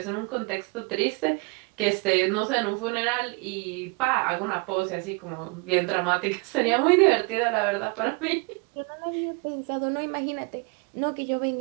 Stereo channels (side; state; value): left; quieter; 30.4 dB